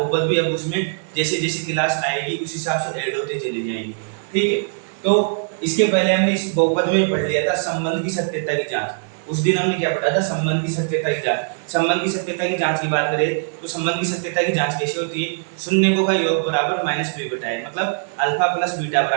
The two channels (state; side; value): silent; left; 65 dB below the other